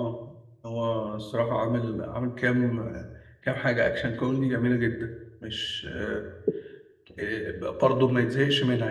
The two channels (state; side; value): identical; both; correlation 1.00